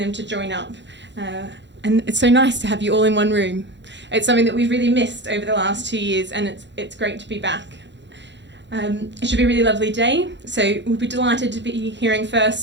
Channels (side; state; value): left; late; 0.52 ms